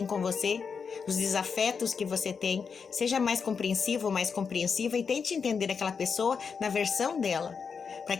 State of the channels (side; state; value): right; quieter; 5.9 dB